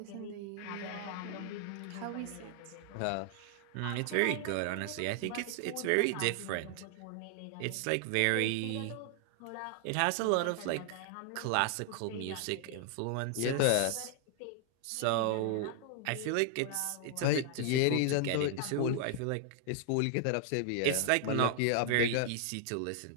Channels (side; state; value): both; different; correlation 0.00